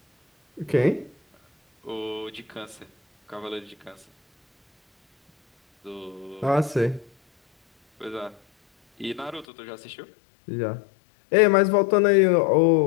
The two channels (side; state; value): right; drops out; at 9.5 s